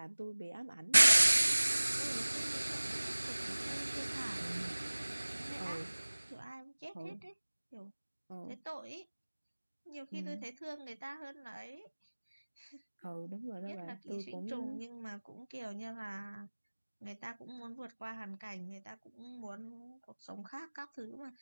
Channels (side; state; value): both; inverted; correlation -1.00